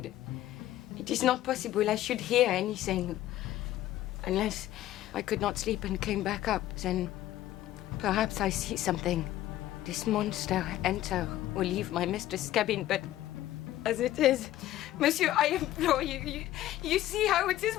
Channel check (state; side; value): quieter; right; 14.1 dB